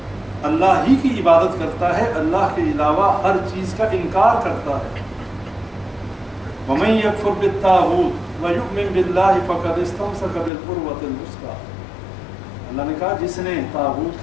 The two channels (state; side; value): drops out; right; at 10.5 s